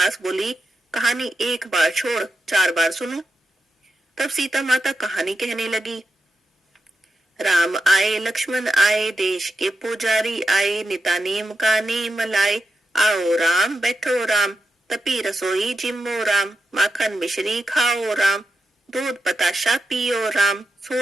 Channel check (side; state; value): both; normal; correlation 0.89